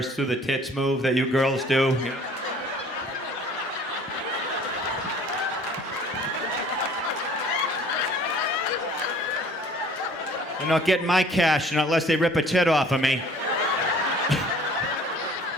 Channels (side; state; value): both; normal; correlation 0.52